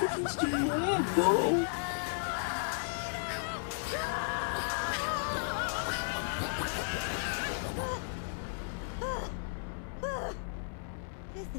do you want, bro? This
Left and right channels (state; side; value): silent; right; 55 dB below the other